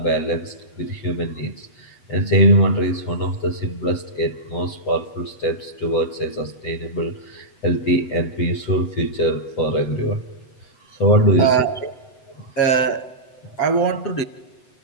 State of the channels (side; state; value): right; late; 8.0 ms